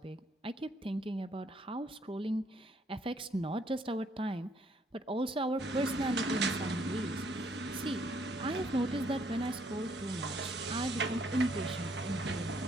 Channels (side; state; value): both; normal; correlation 0.68